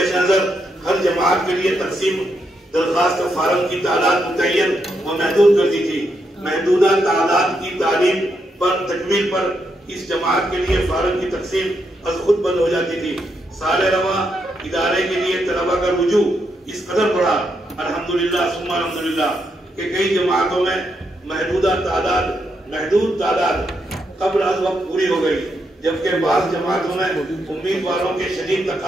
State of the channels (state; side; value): normal; both; correlation 0.80